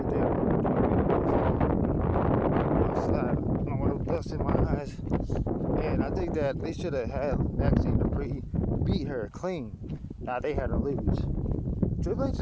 there. In my eyes, and I think that they should have had Maxine dupi beat her clean. Now they had her lose. Triple H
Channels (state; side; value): identical; both; correlation 1.00